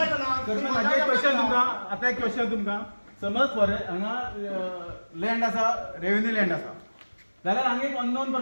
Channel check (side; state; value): both; inverted; correlation -1.00